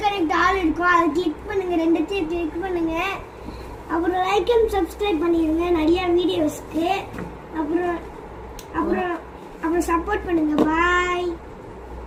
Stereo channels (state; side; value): identical; both; correlation 1.00